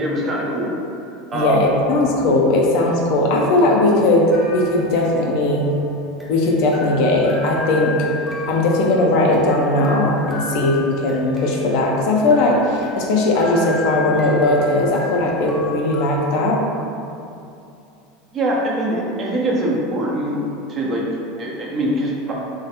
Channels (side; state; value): both; normal; correlation 0.16